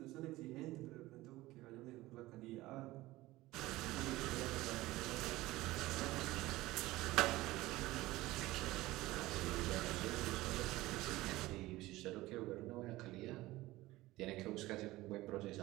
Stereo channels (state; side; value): quieter; left; 18.2 dB